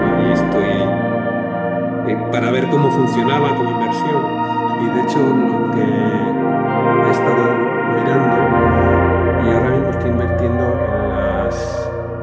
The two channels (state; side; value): identical; both; correlation 1.00